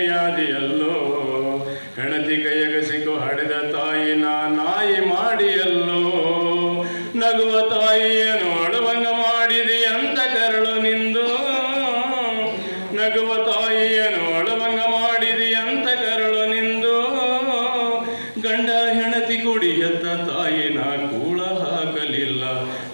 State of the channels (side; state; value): both; inverted; correlation -1.00